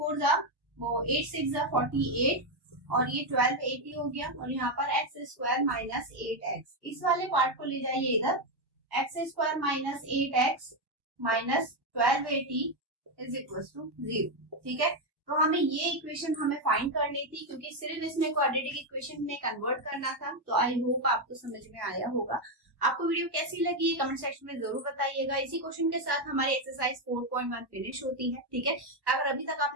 जा वो 8 6 जा 48 और ये 12 80 हो गया और यहाँ पर एक्स स्क्वायर माइनस 8x, इस वाले पार्ट को ले जाइए इधर, x square minus 8x minus 1280 is equal to 0, ठीक है। तो हमें ये इक्वेशन हमें फाइंड करनी थी क्योंकि सिर्फ इसमें क्वाड्रेटिक इक्वेशन में कन्वर्ट करना था। तो आई होप आपको समझ में आया होगा। आपको वीडियो कैसी लगी कमेंट सेक्शन में जरूर बताइएगा। इसी क्वेश्चन के साथ हमारी एक्सरसाइज 4.1 फिनिश होती है, ठीक है। अगर अभी तक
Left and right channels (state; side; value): late; left; 1.1 ms